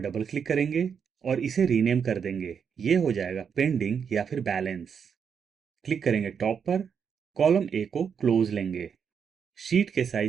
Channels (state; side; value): quieter; left; 6.9 dB